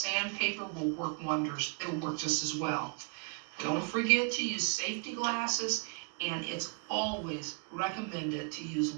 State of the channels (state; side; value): quieter; left; 36.8 dB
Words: will work wonders. It'll work just as well. Don't forget to use safety glasses, and it's always recommended to use